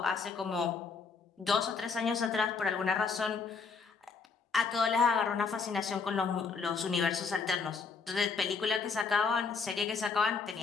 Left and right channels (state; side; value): quieter; right; 5.0 dB